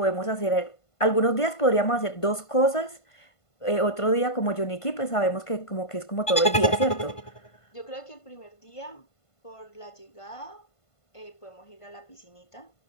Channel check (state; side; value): late; right; 1.5 ms